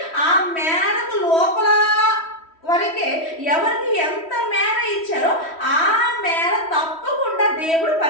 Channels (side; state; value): right; late; 3.1 ms